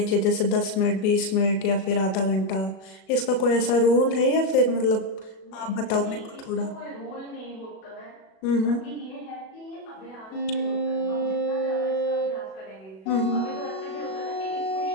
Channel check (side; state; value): right; late; 37 ms